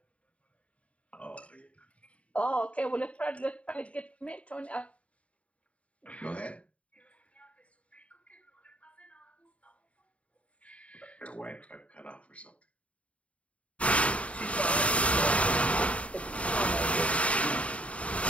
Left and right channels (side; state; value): right; late; 0.064 ms